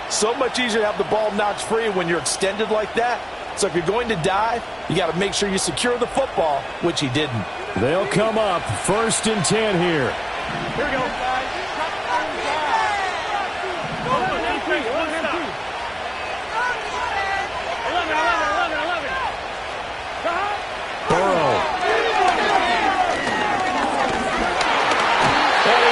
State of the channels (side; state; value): both; identical; correlation 1.00